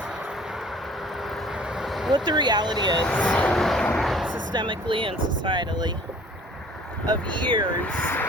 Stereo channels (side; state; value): both; normal; correlation 0.51